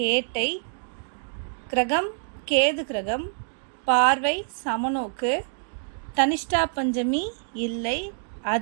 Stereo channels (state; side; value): silent; left; digital silence